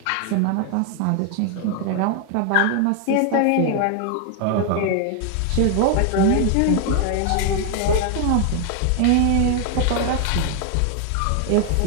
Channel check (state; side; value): different; both; correlation 0.00